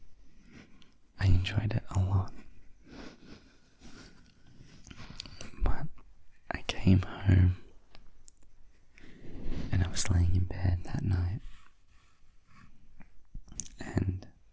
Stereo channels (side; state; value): both; identical; correlation 1.00